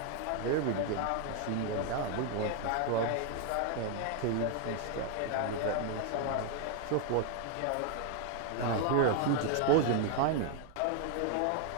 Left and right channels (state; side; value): different; both; correlation 0.00